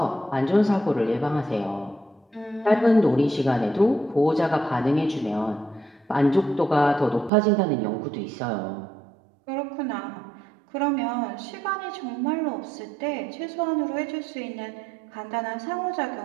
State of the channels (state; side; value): drops out; left; at 7.3 s